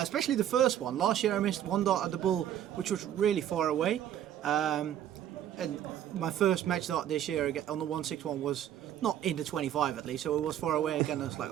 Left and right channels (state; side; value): quieter; left; 10.9 dB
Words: especially the first one. Last year I missed one dart at the bull, which was really far away. And my first match dart this year on the 161 was not in the 25 at least, so it was far away again. I was like,